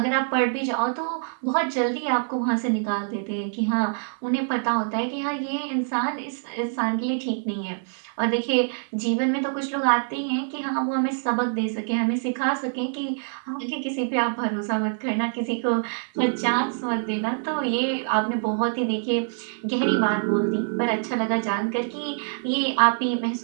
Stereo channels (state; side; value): silent; left; 62 dB below the other